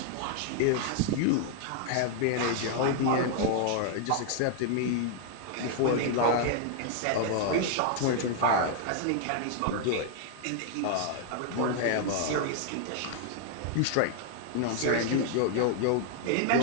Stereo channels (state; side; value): different; both; correlation 0.00